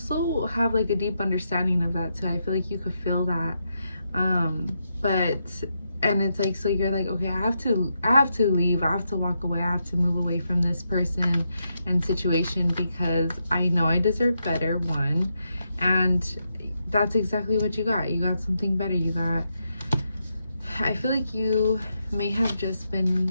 have like a deep understanding of that too. I feel like you could feel that. And it's like, so you're like, okay, I have to leave. I have to walk away. I have to move away from this person and situation because I know I deserve better, one. And that's exactly what you got. You got something better. I feel like you may have just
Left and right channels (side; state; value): both; inverted; correlation -0.83